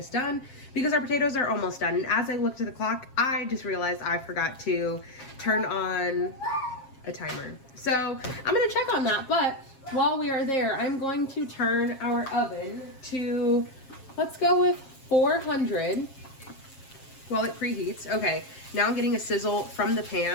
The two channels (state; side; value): late; right; 7.4 ms